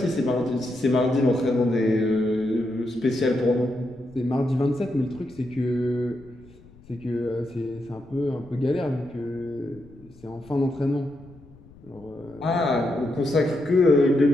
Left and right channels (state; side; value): noise; left; rumble, 24 dB below the sound